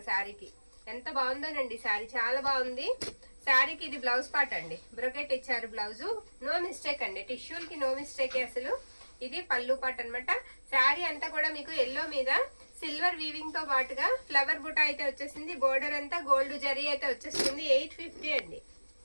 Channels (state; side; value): inverted; both; correlation -1.00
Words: శారీకి. ఎంత బాగుందోనండి శారీ, చాలా బాగుంది. శారీకి ఇది బ్లౌజ్ పార్ట్ అండి. బ్రొకెట్ ఇచ్చారు బ్లౌజు. నో మిస్టేక్ అండి, టిష్యూలకి నో మిస్టేక్ అసలు. ఇది పళ్ళు పార్ట్ అనమాట. శారీ అంతా కూడా మీకు ఎల్లో మీద సిల్వర్ వీవింగ్ తో పాటుగా ఫ్లవర్ బుటా అయితే వచ్చేసింది. బోర్డర్ అంతా గోల్డ్ జరీ అయితే వచ్చేస్తుంది. 850 అండి.